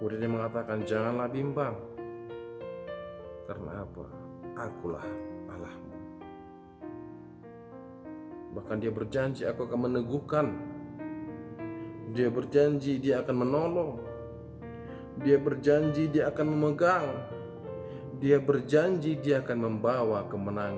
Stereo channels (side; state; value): both; identical; correlation 1.00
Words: dia mengatakan janganlah bimbang. Karena apa? Akulah Allahmu. Bahkan dia berjanji aku akan meneguhkan. Dia berjanji dia akan menolong. Dia berjanji dia akan memegang. Dia berjanji dia akan membawa